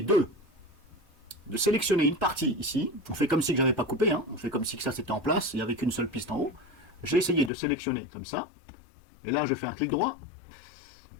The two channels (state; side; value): drops out; right; at 7.5 s